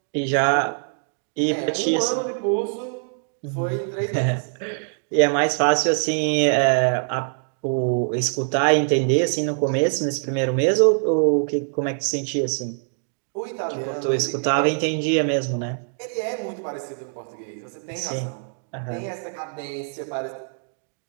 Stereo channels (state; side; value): silent; left; digital silence